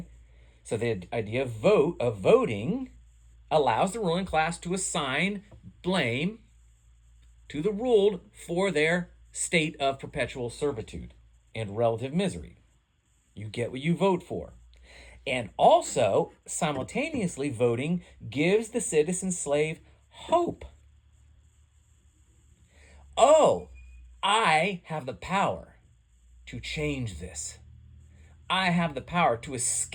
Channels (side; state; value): both; identical; correlation 1.00